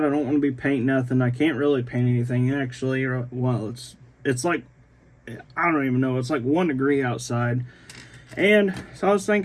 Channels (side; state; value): both; identical; correlation 1.00